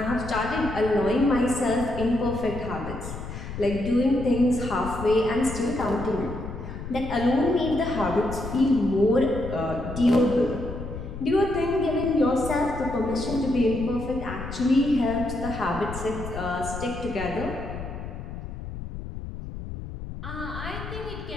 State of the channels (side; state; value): left; noise; rumble, 9 dB below the sound